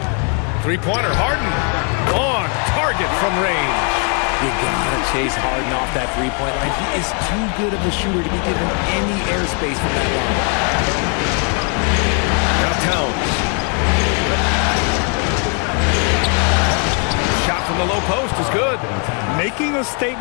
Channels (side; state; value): right; quieter; 39.8 dB